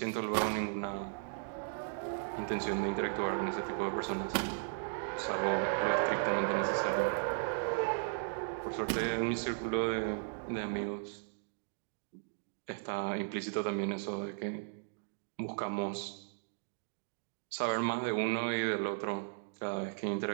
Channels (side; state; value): left; silent; digital silence